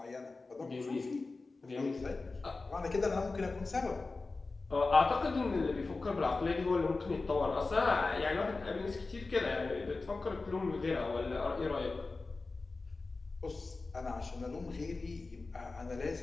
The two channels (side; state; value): right; quieter; 3.7 dB